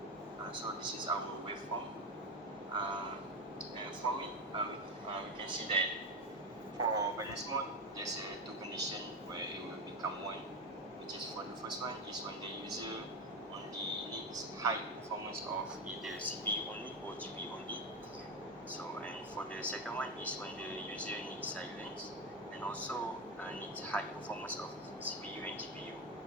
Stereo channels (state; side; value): normal; both; correlation 0.15